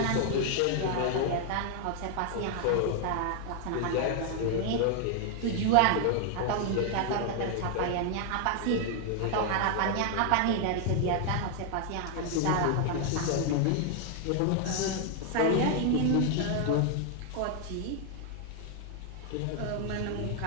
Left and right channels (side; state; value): both; different; correlation 0.00